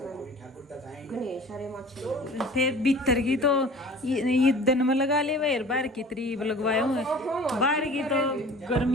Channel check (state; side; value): normal; both; correlation 0.44